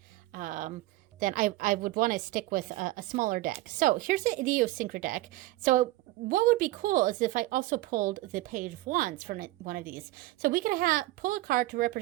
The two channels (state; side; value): quieter; left; 17.6 dB